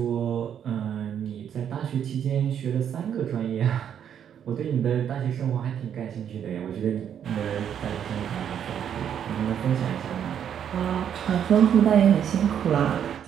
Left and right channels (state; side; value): quieter; left; 8.9 dB